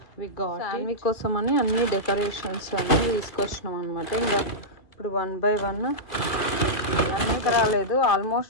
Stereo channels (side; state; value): right; late; 2.6 ms